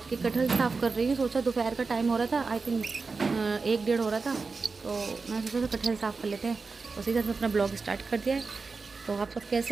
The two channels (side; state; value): left; quieter; 4.4 dB